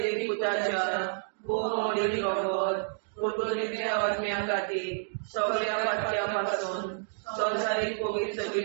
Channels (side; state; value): left; silent; digital silence